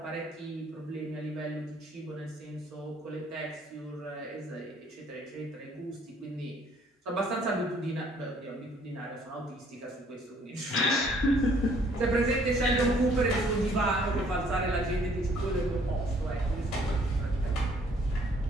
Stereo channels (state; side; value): normal; both; correlation 0.62